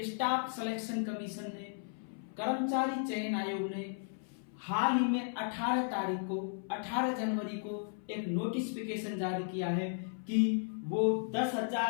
स्टाफ सिलेक्शन कमीशन ने, कर्मचारी चयन आयोग ने हाल ही में 18 जनवरी को एक नोटिफिकेशन जारी किया है कि वो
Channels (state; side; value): silent; right; 54 dB below the other